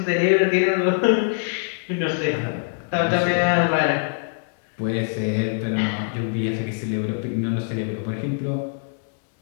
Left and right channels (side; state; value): right; silent; digital silence